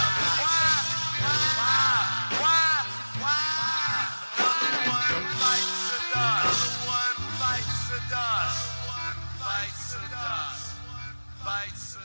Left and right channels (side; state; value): both; inverted; correlation -1.00